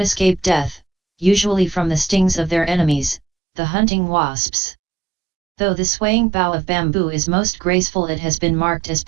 escape death, usually from the stings of their enemies, the hunting wasps. Though the swaying bough of bamboo is most graceful, it has been marked as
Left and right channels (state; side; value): drops out; left; at 3.2 s